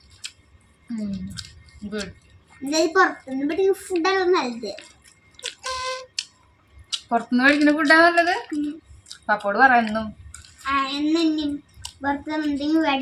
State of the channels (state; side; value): identical; both; correlation 1.00